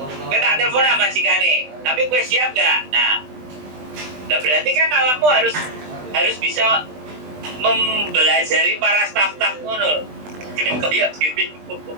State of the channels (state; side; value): late; left; 20 ms